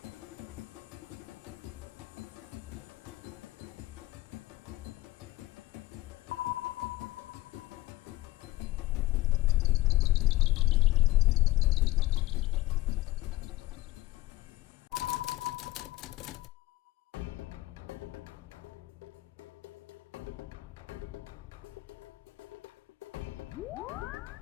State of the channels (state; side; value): quieter; right; 17.6 dB